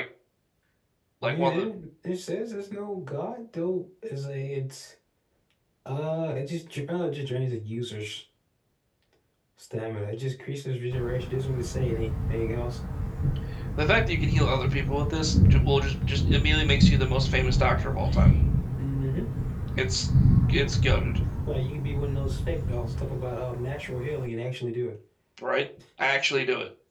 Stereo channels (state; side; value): identical; both; correlation 1.00